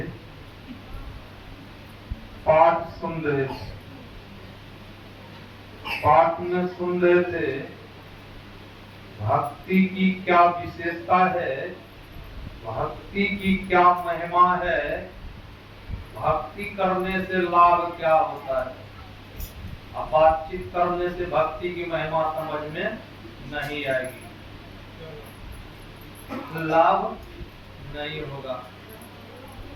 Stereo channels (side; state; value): both; identical; correlation 1.00